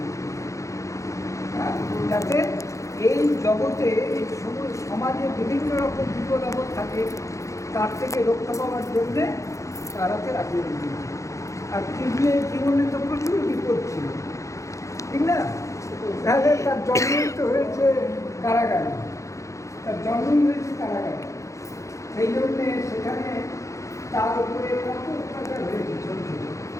যাতে এই জগতে এই সমাজে বিভিন্ন রকম বিপদ আপদ থাকে, তার থেকে রক্ষা পাওয়ার জন্যে তার হাতে রাখি বেঁধে দিয়েছিল। আর জীবনে তো প্রচুর বিপদ ছিল, ঠিক না? তাহলে তার জন্মই তো হয়েছে কারাগারে, সেই জন্যে সেখানে তার উপরে কত অত্যাচার হয়েছে ছোট ছোট,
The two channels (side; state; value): right; late; 0.15 ms